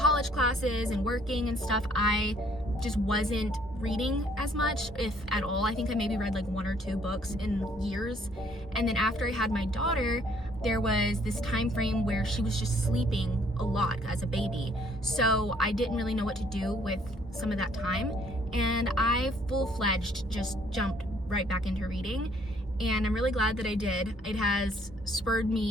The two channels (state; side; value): normal; both; correlation 0.64